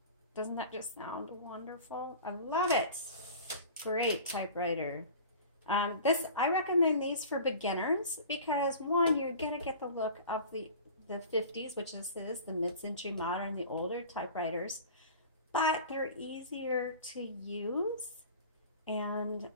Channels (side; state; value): both; inverted; correlation -0.40